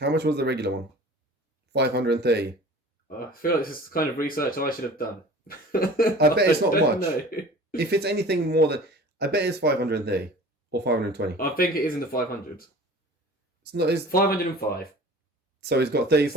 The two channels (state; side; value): normal; both; correlation 0.43